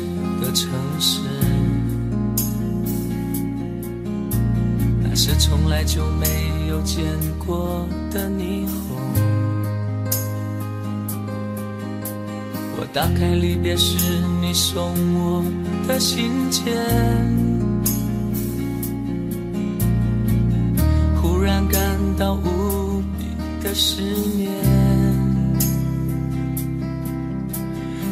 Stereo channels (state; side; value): identical; both; correlation 1.00